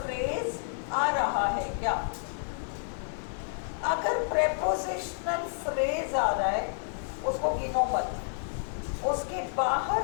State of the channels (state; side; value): silent; right; 58 dB below the other